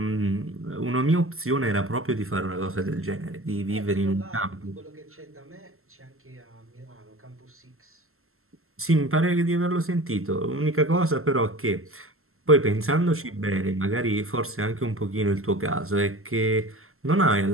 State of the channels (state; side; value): late; left; 0.62 ms